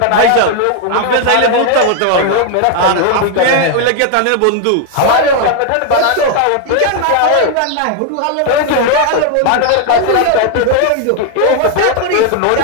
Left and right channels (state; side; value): different; both; correlation 0.01